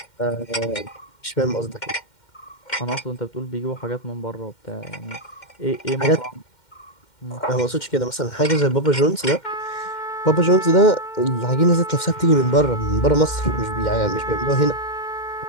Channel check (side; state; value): right; late; 2.1 ms